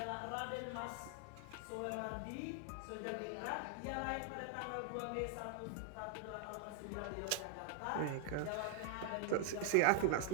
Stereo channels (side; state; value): both; different; correlation 0.00